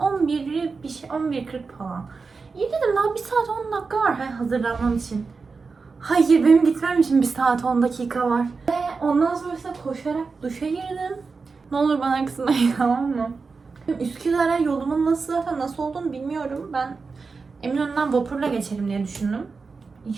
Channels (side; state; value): left; quieter; 4.6 dB